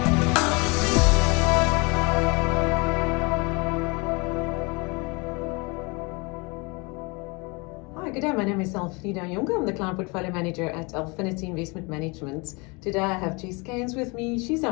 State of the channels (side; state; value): right; quieter; 28.9 dB